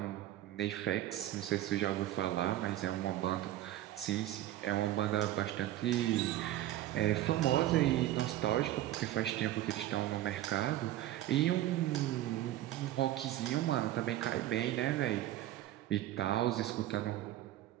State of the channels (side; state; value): left; quieter; 13.9 dB